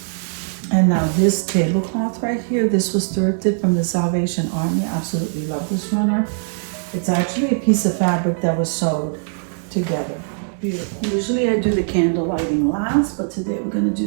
And now this tablecloth right here, this was thrifted from the Salvation Army. Absolutely love this runner. It's actually a piece of fabric that was sewed together. Beautiful. Usually I do the candle lighting last, but today we're gonna do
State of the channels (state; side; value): silent; left; 65 dB below the other